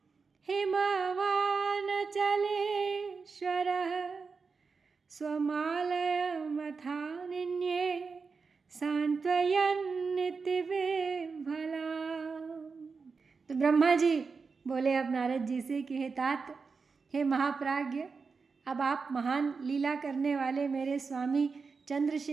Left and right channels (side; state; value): left; quieter; 4.9 dB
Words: हिमवानचलेश्वरः स्वमालयमथानिन्ये सांत्वयन्निति विह्वला। तो ब्रह्मा जी बोले अब नारद जी से कि हे तात, हे महाप्राज्ञ, अब आप महान लीला करने वाले मेरे स्वामी